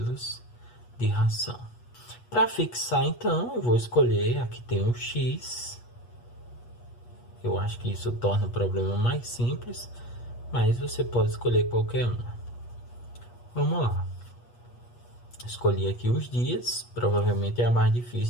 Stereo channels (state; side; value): late; right; 8.3 ms